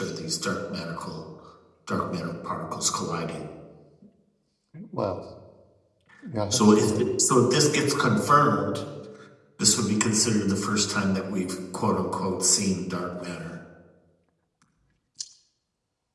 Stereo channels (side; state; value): both; identical; correlation 1.00